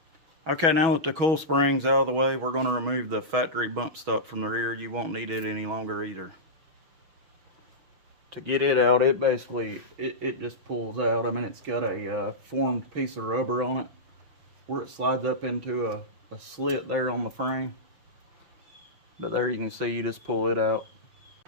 Okay, now that the coil spring's out of the way, we're going to remove the factory bump stop from the rear. You won't need it any longer either. To get it out, it basically, it just pulls out. I mean, it's got a formed piece of rubber on it where it slides up into a slit there on the frame. But there you can see, you just pull it out.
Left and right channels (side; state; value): left; late; 6.3 ms